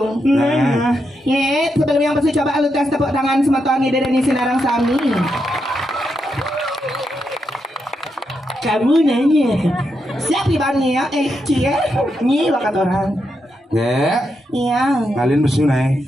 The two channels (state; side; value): normal; both; correlation 0.83